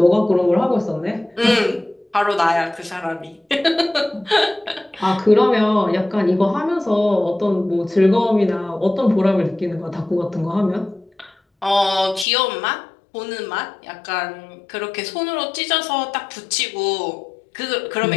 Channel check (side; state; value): right; drops out; at 12.2 s